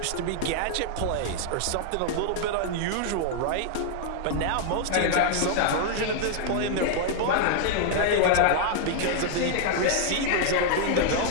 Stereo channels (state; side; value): different; both; correlation -0.01